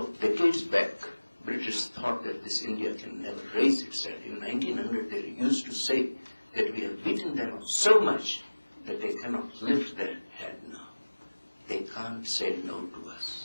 of decades back, British thought that this India can never raise itself. In 1900, they used to say that we have beaten them so much that they cannot lift their head now. They can't say no to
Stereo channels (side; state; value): both; inverted; correlation -1.00